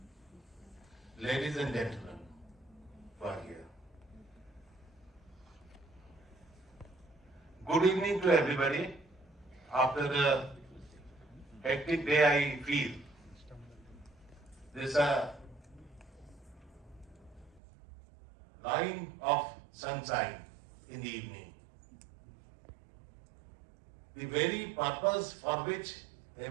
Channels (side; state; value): left; drops out; at 17.6 s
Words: ladies and gentlemen who are here. Good evening to everybody. After a hectic day, I feel there's a line of sunshine in the evening. The very purpose for which